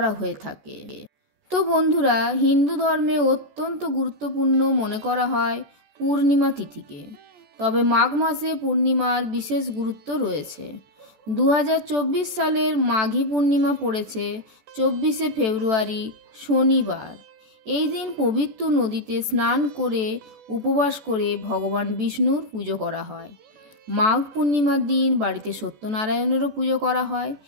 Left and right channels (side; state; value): left; late; 14 ms